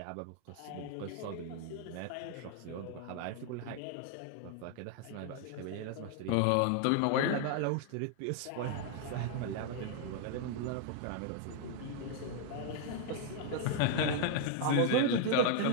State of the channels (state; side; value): different; both; correlation 0.00